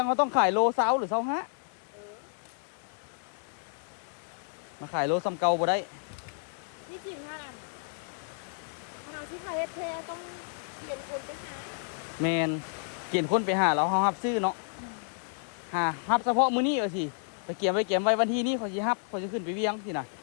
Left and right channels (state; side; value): silent; right; 57 dB below the other